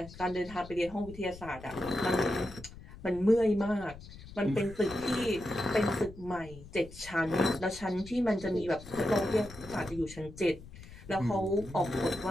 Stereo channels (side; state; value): left; noise; rumble, 16 dB below the sound